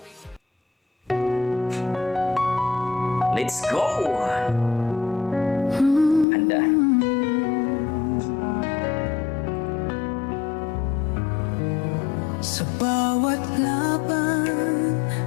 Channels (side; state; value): right; drops out; at 6.2 s